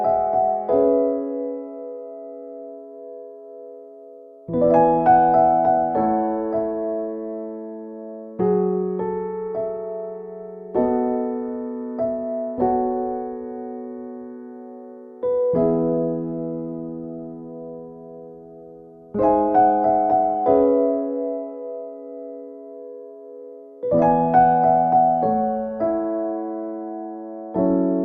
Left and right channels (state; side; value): identical; both; correlation 1.00